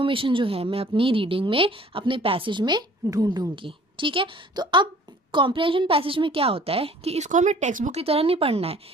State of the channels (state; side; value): normal; both; correlation 0.52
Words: जो है मैं अपनी रीडिंग में, अपने पैसेज में ढूंढूंगी। ठीक है, तो अब कॉम्प्रिहेंशन पैसेज में क्या होता है कि इसको हमें टेक्स्ट बुक की तरह नहीं पढ़ना है,